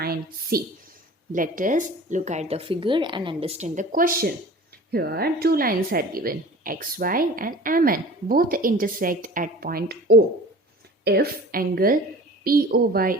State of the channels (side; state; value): both; normal; correlation 0.42